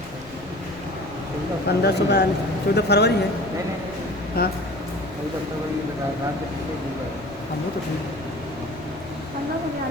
1542, 14 फरवरी है। हाँ हम वो तो ठीक है।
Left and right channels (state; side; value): noise; left; rumble, 20 dB below the sound